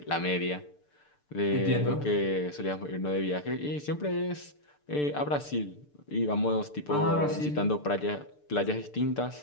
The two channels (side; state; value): right; late; 6.8 ms